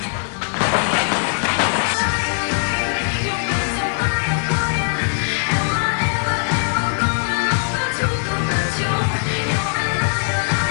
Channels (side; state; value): right; silent; digital silence